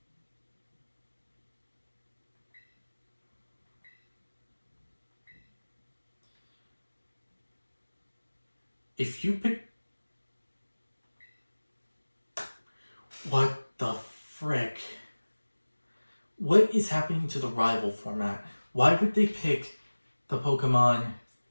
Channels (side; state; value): both; inverted; correlation -1.00